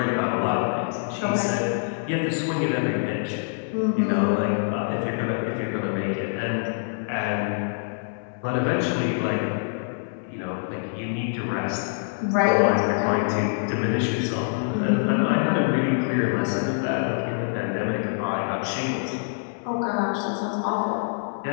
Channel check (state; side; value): silent; right; digital silence